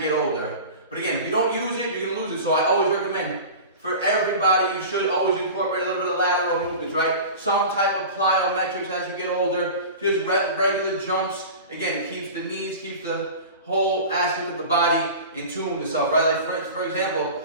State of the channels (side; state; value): both; inverted; correlation -0.34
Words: get older. But again, if you don't use it, you're going to lose it. So I always recommend for everybody, you should always incorporate a little bit of lateral movements, right? Some type of plyometrics as you get older, just regular jumps. Again, it keeps the knees, keeps the whole aspect of the body in tune with itself, right? Like for example,